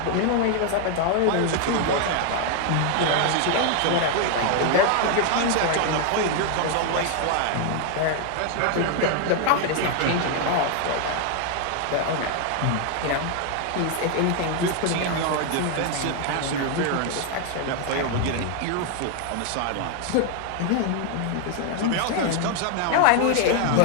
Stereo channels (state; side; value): different; both; correlation 0.00